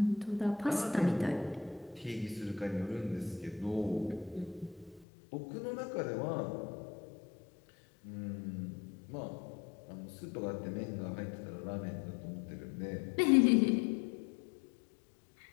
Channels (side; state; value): right; drops out; at 5.1 s